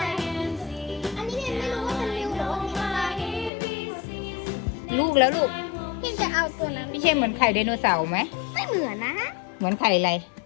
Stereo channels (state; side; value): drops out; right; at 3.5 s